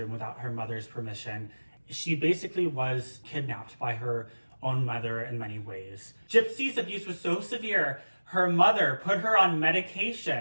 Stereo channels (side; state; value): both; inverted; correlation -1.00